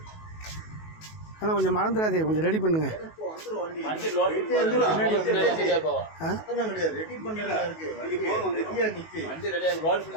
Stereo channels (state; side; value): late; right; 19 ms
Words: ஆனால் கொஞ்சம் மறந்துடாதே, கொஞ்சம் ரெடி பண்ணுங்க.